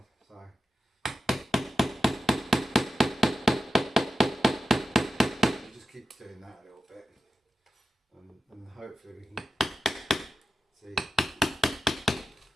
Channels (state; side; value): normal; both; correlation 0.92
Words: So we'll just keep doing that a little bit, and hopefully we can see.